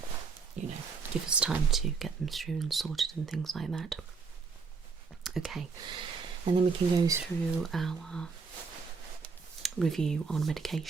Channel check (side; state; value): left; quieter; 5.1 dB